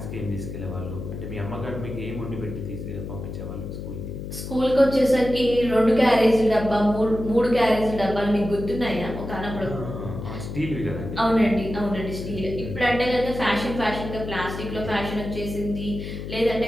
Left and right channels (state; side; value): noise; left; hum, 8 dB below the sound